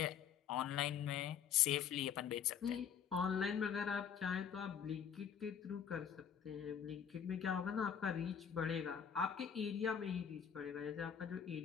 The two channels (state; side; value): quieter; right; 8.0 dB